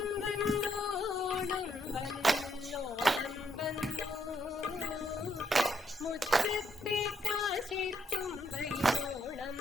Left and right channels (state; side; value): normal; both; correlation 0.75